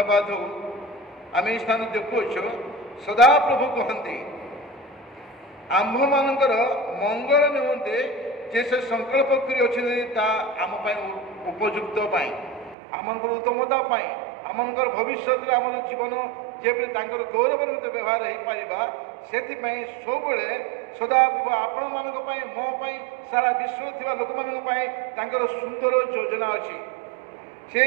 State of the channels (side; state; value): left; drops out; at 12.8 s